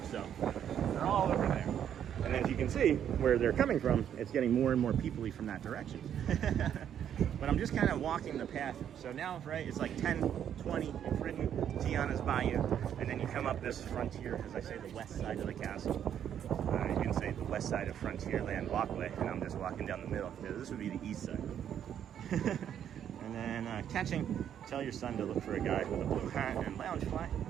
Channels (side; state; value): left; quieter; 9.4 dB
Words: So they're all over there. And as you can see where they're coming from, it's getting more and more people-y from that direction. But I'm just kind of walking the path. So now, right, it's like 10, 20, you've ridden Tiana's Bayou, and then you come up this frontier, as I say, the west side of the castle. You can say the west side of Frontierland walkway, and I'm just walking down the middle. Yeah, this would be the east side. And then catching, tell your son to look for a guy with a blue hat and lounge fly.